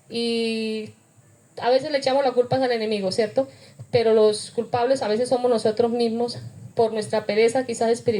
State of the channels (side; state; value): both; identical; correlation 1.00